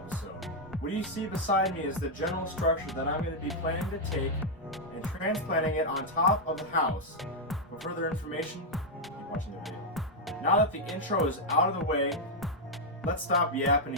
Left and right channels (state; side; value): normal; both; correlation -0.02